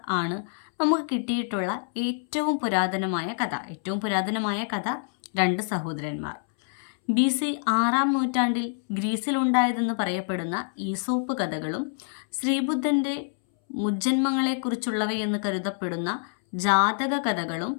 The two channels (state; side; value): silent; right; 61 dB below the other